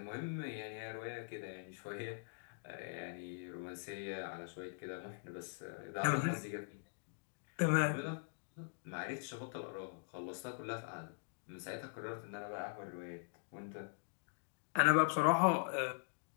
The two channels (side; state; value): right; silent; digital silence